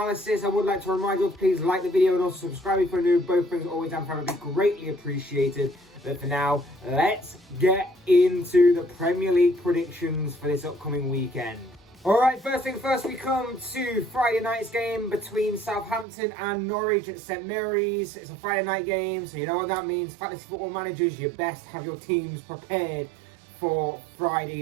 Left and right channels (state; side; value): drops out; left; at 16.1 s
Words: I would like to remind you to please like the video and also subscribe if you're new. Both things always and forever be greatly appreciated. But for now, let's get into the Premier League predictions for this upcoming weekend. Alright, first thing first, we come to Friday night's game between Southampton and Norwich at St Mary's. It's a Friday night game, so you know what that means. Fantasy football managers, you best have your teams prepared for